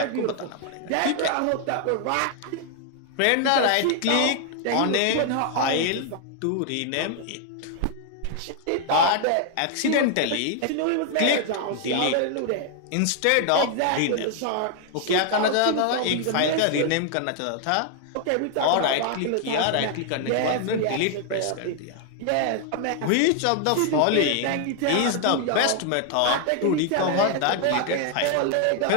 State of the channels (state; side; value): different; both; correlation 0.00